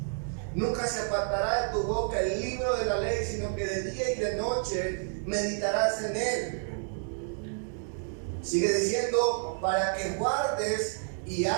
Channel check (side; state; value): left; silent; 58 dB below the other